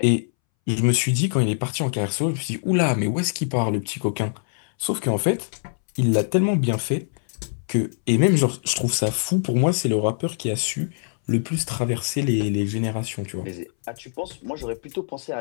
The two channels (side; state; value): right; silent; 63 dB below the other